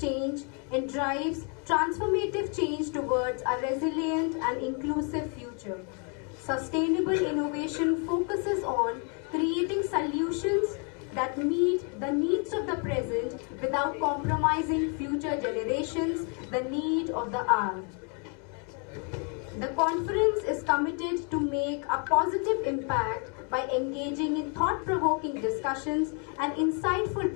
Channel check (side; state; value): right; quieter; 38.0 dB